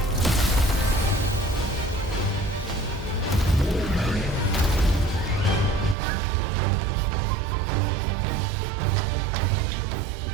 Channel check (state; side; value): drops out; left; at 6.0 s